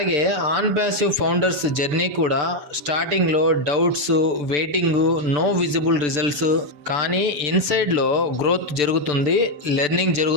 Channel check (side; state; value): left; late; 6.8 ms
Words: ఆన్ ప్యాసివ్ ఫౌండర్స్ జర్నీ కూడా స్టార్టింగ్లో doubts, waiting, no visible results. కానీ ఇన్సైడ్లో గ్రోత్ జరుగుతుంది, లెర్నింగ్